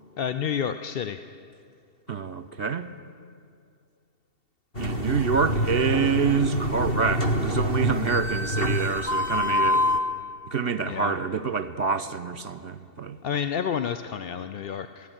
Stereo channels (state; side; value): late; right; 2.7 ms